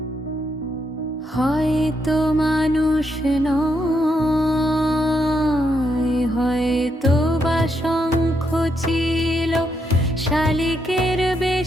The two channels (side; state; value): both; normal; correlation 0.79